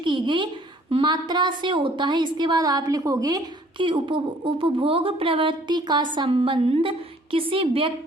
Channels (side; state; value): both; normal; correlation 0.57